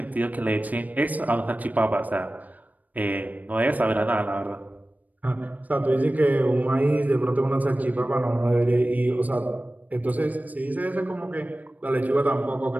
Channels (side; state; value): left; late; 0.077 ms